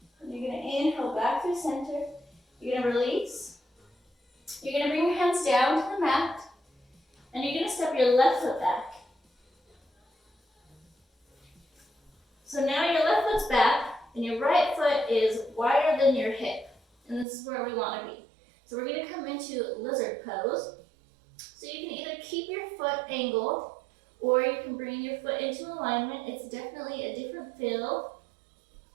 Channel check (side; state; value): left; drops out; at 17.2 s